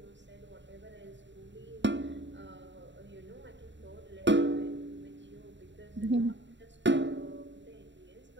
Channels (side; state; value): left; late; 0.53 ms